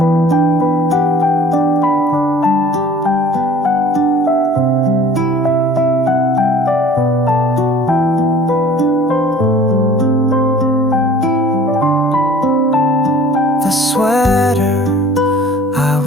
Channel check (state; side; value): normal; both; correlation 0.50